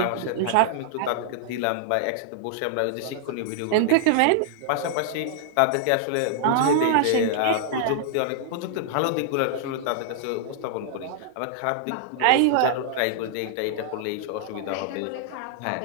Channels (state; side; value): different; both; correlation -0.01